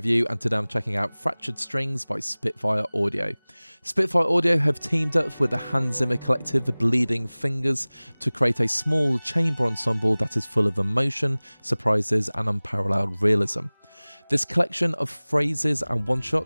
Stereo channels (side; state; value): both; inverted; correlation -1.00